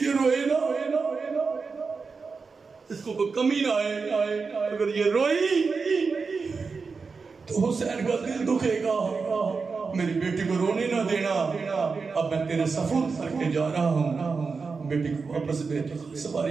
روئے نا، اس کو کوئی کمی نہ آئے، اگر یہ روئی تو حسین کا دل دکھے گا، میری بیٹی کو رونے نہ دینا، اب میں تیرے سفر کر کے جا رہا ہوں، بیٹی کو واپس بیٹی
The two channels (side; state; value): left; quieter; 4.8 dB